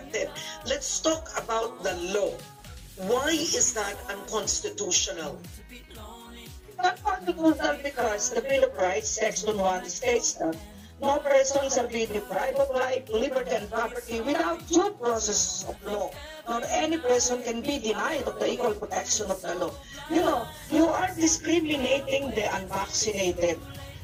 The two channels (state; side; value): identical; both; correlation 1.00